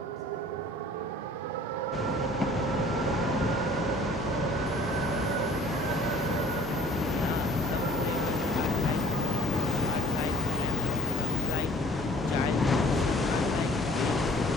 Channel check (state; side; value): normal; both; correlation 0.49